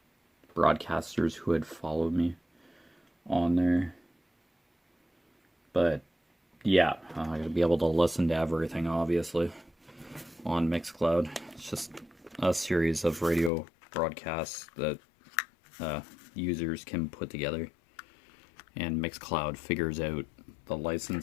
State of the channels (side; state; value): right; drops out; at 13.5 s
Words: broadcasters who had followed me on there. But yeah, I gotta be able to listen to everything, obviously, on Mixcloud. It's just a series of radio broadcasts that users can put together, and Mixcloud figures out the